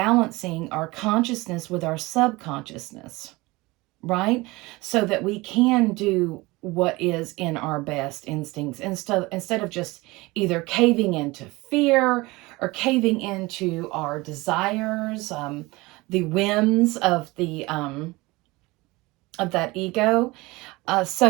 our consciousness with our subconsciousness, right? So that we can do what is in our best instincts instead of just either caving into fear or caving into our desires, the whims of that ego.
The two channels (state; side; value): quieter; left; 22.1 dB